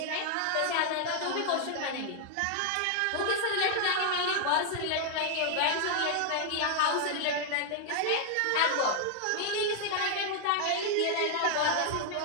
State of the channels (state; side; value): different; both; correlation 0.00